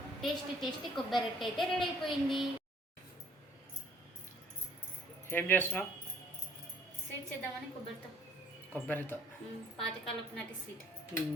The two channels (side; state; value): both; normal; correlation 0.59